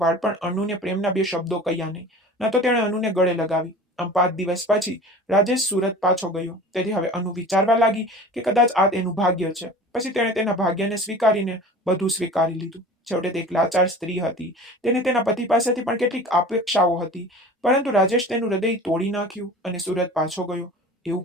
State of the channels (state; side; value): normal; both; correlation 0.39